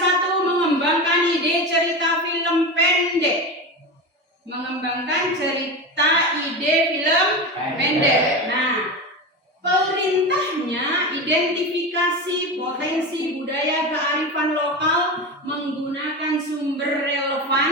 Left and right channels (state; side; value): normal; both; correlation 0.23